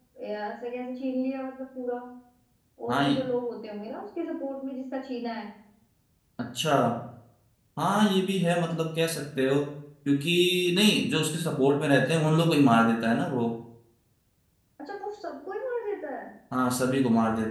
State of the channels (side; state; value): both; identical; correlation 1.00